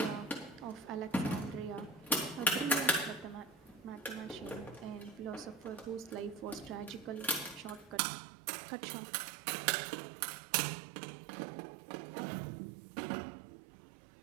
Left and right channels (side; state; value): left; drops out; at 8.0 s